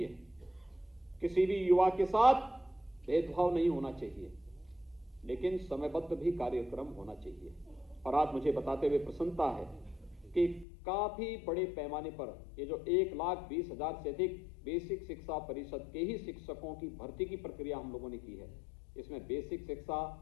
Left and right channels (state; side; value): drops out; right; at 10.7 s